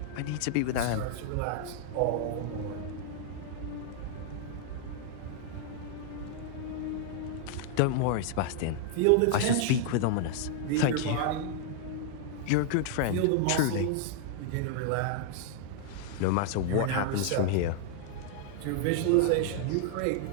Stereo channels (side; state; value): both; different; correlation -0.01